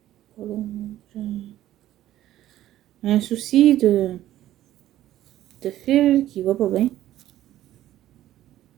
Un souci de fil qui va pas bien.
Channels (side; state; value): left; quieter; 13.4 dB